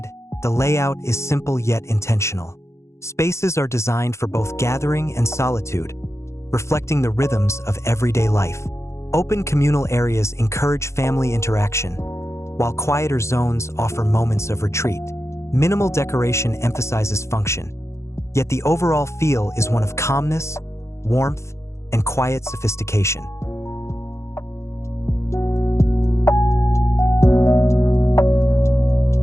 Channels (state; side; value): late; right; 0.14 ms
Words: the layout is simple yet intentional. Spaces are designed for both gathering and solitude, reflecting the rhythms of everyday life. Open communal areas encourage family interaction, while quieter zones offer moments of retreat. Minimal decoration emphasizes function, yet the overall feel is one of calmness, warmth, and quiet sophistication.